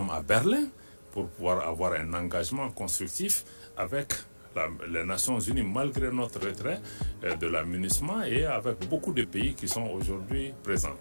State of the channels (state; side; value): inverted; both; correlation -1.00